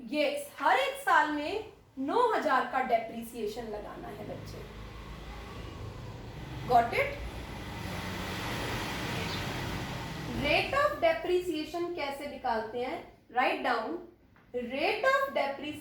यस, हर एक साल में 9,000 का डेप्रिसिएशन लगाना है बच्चे। Got it? Rate of depreciation कैसे निकालते हैं? Write down, rate of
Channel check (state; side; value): identical; both; correlation 1.00